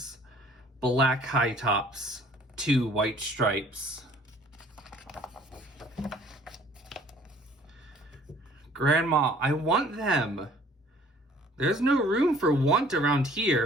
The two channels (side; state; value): both; normal; correlation 0.55